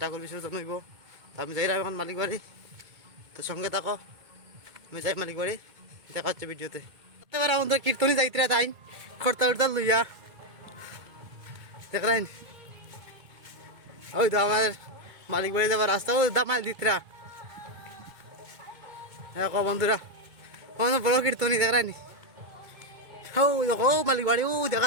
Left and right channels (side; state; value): left; late; 2.3 ms